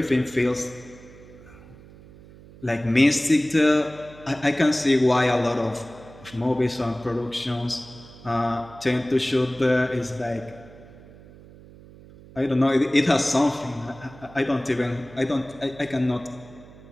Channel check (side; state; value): right; noise; hum, 21 dB below the sound